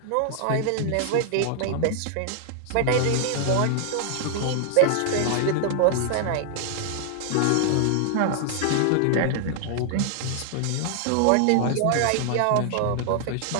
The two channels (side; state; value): both; different; correlation 0.00